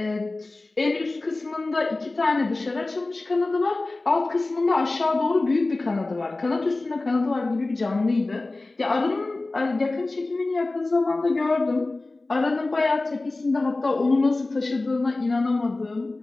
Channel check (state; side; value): quieter; right; 3.1 dB